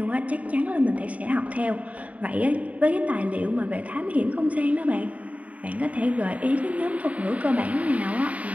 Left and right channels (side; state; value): left; late; 0.068 ms